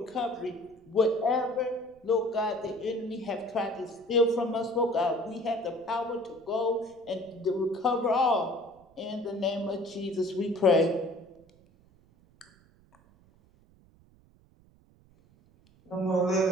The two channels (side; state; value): right; noise; rumble, 29 dB below the sound